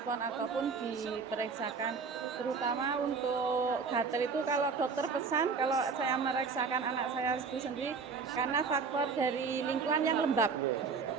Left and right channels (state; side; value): quieter; left; 5.2 dB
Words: ataupun diperiksakan, terutama untuk gatal itu kalau dokter pesan kalau saya memeriksakan anak saya itu sendiri karena faktor dari lingkungan yang lembab